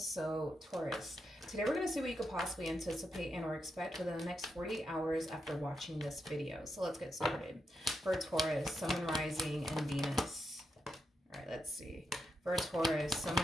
Taurus, today we're going to see what you could possibly anticipate and or expect within the next 48 hours after watching this video. So let's get started. For Taurus, Sun, Rising, and Venus. All right, let's see. For Taurus,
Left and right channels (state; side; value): normal; both; correlation 0.85